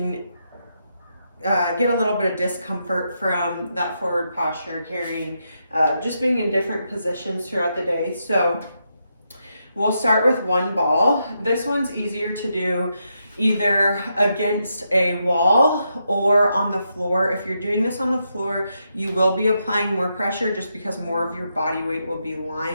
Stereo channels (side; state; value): both; inverted; correlation -0.82